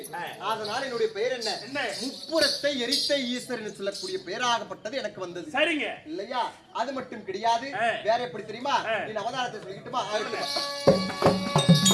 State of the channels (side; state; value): both; identical; correlation 1.00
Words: அதனால என்னுடைய பெயர் என்ன? முப்புறத்தை எரித்த ஈஸ்வரன் என்று சொல்லக்கூடிய பெயராகப்பட்டது எனக்கு வந்தது. சரிங்க இல்லையா? அது மட்டும் கிடையாது. வேற எப்படி தெரியுமா? நீ அவதாரத்தை சொல்லிக்கிட்டுமா?